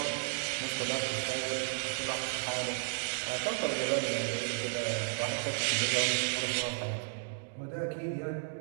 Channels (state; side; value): silent; left; digital silence